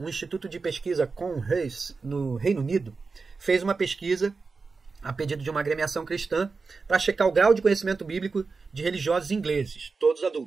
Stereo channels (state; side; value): quieter; left; 4.4 dB